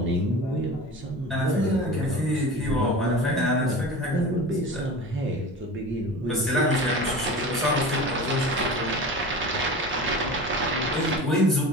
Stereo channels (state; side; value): normal; both; correlation 0.34